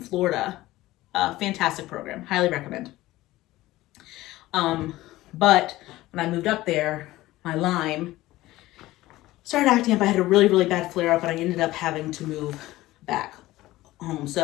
Fantastic program, highly recommend. But when I moved up there, my Lyme started acting up. I had a really, really bad flare up, and I ended up having to move back home.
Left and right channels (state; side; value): quieter; right; 17.2 dB